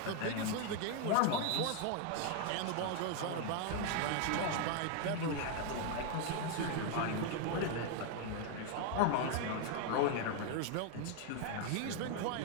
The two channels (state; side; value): different; both; correlation 0.01